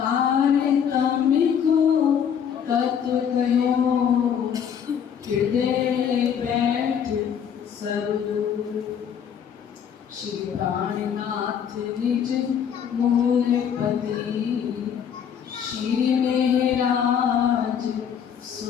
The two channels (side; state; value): right; quieter; 8.1 dB